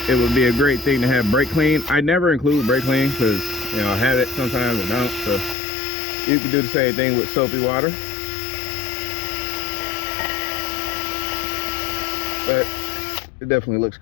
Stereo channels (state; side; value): drops out; right; at 5.6 s